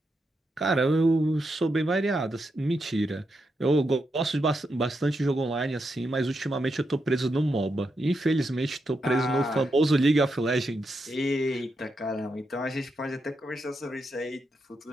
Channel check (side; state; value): both; normal; correlation 0.84